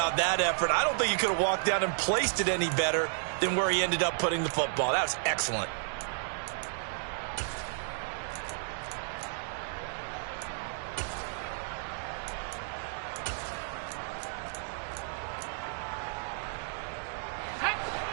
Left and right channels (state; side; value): silent; left; digital silence